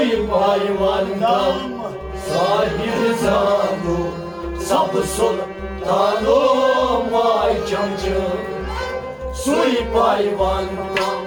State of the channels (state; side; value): identical; both; correlation 1.00